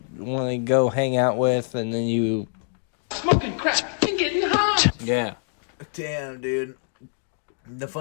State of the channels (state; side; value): silent; right; digital silence